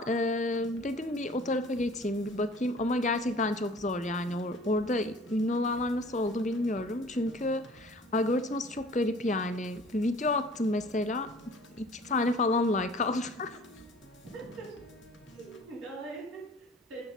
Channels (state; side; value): normal; both; correlation 0.49